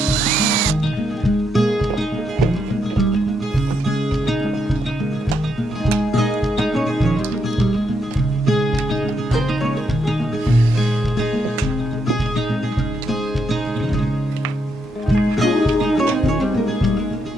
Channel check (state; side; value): normal; both; correlation 0.79